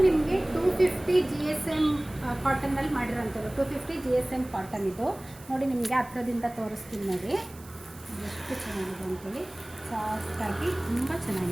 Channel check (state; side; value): noise; right; hiss, 22 dB below the sound